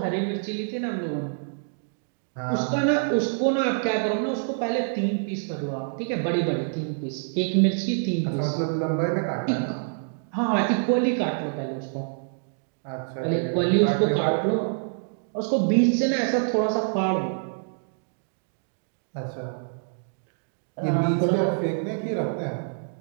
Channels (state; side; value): silent; left; digital silence